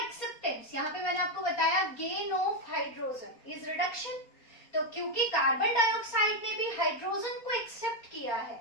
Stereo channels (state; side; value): late; right; 4.2 ms